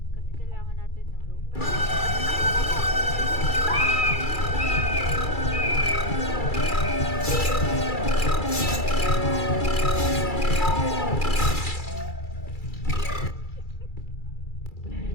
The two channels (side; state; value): right; late; 2.3 ms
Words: Kasi kailangan natin ng rope.